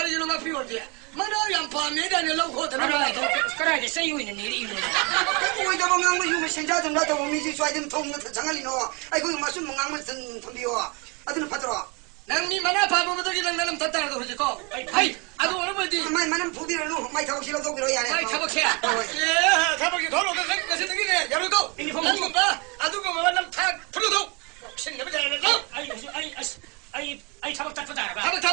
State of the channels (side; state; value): left; quieter; 30.1 dB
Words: 이놈 앞이 어디? 만화 양파 매단에 놓고 들어가. 그래 세유 있는 일이 이거. 왜 저거 망고 유미 신자 좀 나도 미지 쏴든 통는 장알리노. 아이고 마술 망고 든 덤비요. 아들은 받들어. 낭니 만화 바보들이 나는 덧다라도 하지고. 아이 아주 어머니. 마이 만은 부비를 놓 마이 타고 싫어도 그러야 해. 아이 타박해야. 예 타박이 돌아오는 것이 되기네. 열고. 난 봐. 아주 그 만남 타 풀어도. 신내면 잘해서. 아이 타박 닦다 봐. 타박